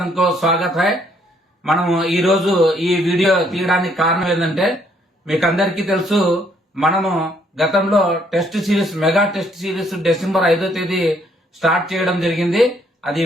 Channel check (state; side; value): normal; both; correlation 0.67